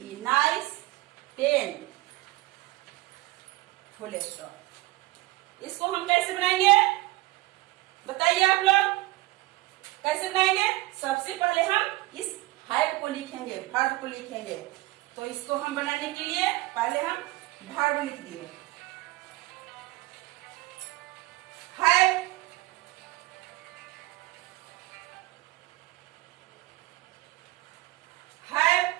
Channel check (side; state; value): left; quieter; 19.8 dB